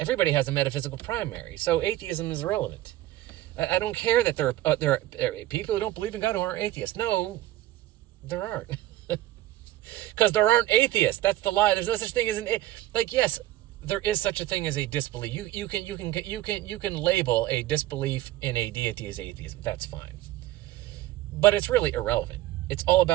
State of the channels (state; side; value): quieter; left; 15.2 dB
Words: has a metaphysical primary, so atheism is irrelevant. I don't care that there are people who don't believe in God who aren't atheists. No, there aren't. Because there aren't atheists. That's the lie. There's no such thing as yes, there is such a thing as a disbelief. You can label a disbelief in a deity as atheism. That's fine. But it's really irrelevant. It's all